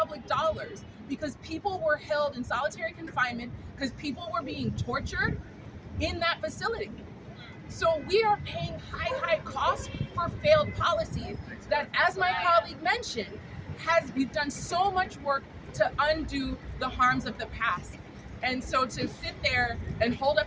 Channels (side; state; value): both; identical; correlation 1.00